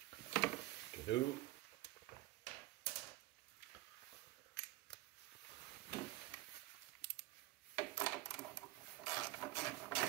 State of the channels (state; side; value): quieter; left; 16.9 dB